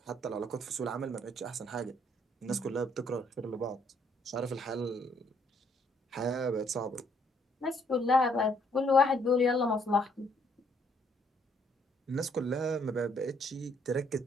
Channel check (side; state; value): both; normal; correlation 0.67